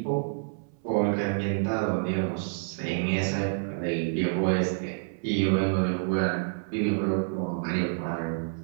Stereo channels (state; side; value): silent; left; 59 dB below the other